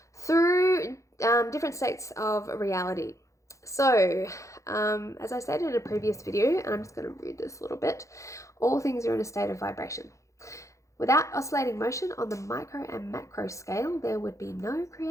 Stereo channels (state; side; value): late; right; 0.15 ms